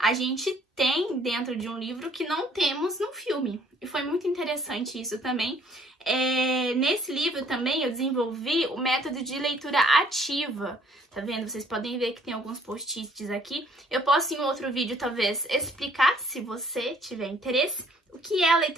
gente tem dentro de um livro que não temos no filme. E foi muito interessante isso também. Nesse livro também eu desenvolvi o método de leitura ativa. Tá vendo? Vocês podem ver que tem alguns post-its aqui. Eu posso em outro vídeo talvez explicar, se você tiver interesse, o que é a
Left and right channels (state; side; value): normal; both; correlation 0.61